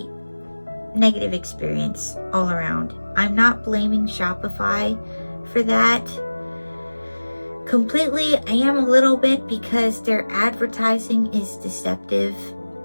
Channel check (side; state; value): both; inverted; correlation -1.00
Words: negative experience all around. I'm not blaming Shopify for that completely. I am a little bit, because their advertising is deceptive.